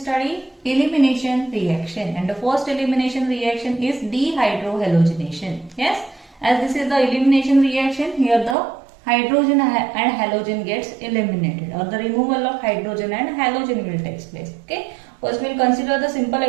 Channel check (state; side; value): drops out; left; at 8.6 s